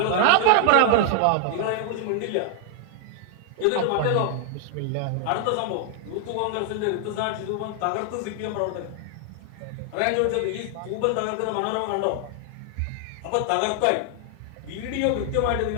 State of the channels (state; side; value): different; both; correlation 0.00